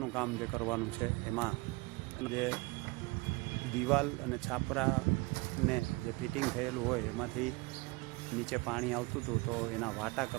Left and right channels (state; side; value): quieter; left; 24.5 dB